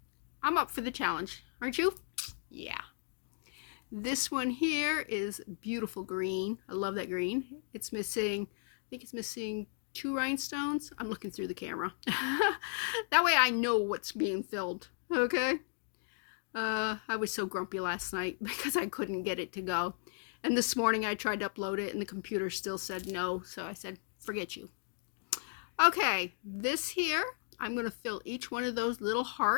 I'm up for the challenge, aren't you? Yeah. This one here is beautiful green. I love that green. It's missing, I think it's missing 2 rhinestones. I'm looking through the camera. That way I know what's being filled. Okay. I was so grumpy last night because I couldn't get it to go. And this morning I tried to upload it and the computer still said no. So I said, forget you. Okay, this here, I'm going to fill each one of those little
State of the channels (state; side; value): silent; right; digital silence